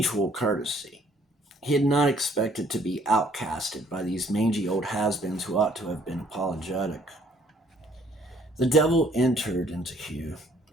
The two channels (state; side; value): normal; both; correlation 0.62